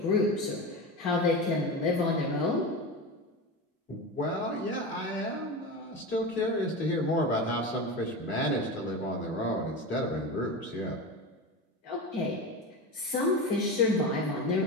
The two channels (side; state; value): both; normal; correlation 0.24